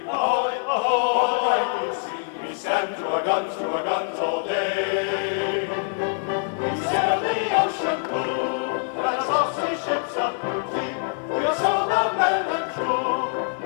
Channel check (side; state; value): right; silent; 62 dB below the other